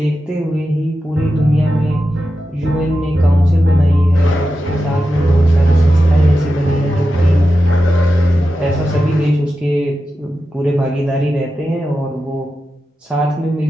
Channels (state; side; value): normal; both; correlation 0.91